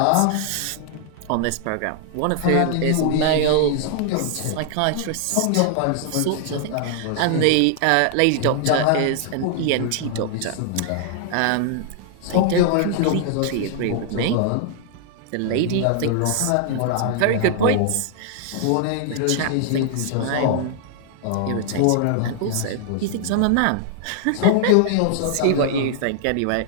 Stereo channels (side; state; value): both; different; correlation 0.00